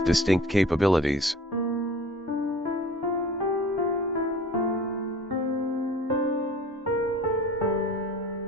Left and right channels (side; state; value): both; normal; correlation 0.44